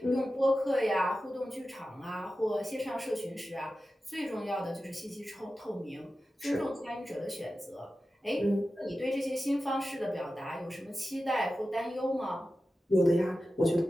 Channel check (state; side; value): normal; both; correlation 0.93